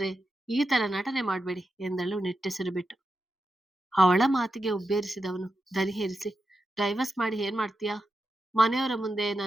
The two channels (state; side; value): normal; both; correlation 0.89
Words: ಈ ತರ ನಟನೆ ಮಾಡ್ಬೇಡಿ ಎಂದಳು ನಿಟ್ಟುಸಿರು ಬಿಟ್ಟು. ಅವಳ ಮಾತಿಗೆ ಉಬ್ಬೇರಿಸಿದವನು ದನಿ ಹೇರಿಸಿ, ಡೈವರ್ಸ್ ಮಾಡಿ ಏನ್ ಮಾಡ್ತೀಯಾ? ಮನೆಯವರ ಮುಂದೆ